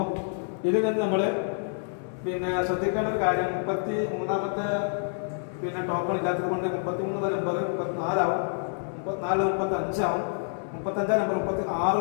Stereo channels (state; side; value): silent; right; digital silence